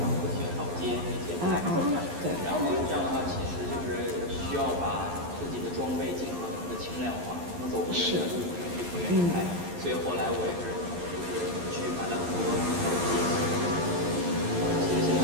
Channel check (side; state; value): left; late; 11 ms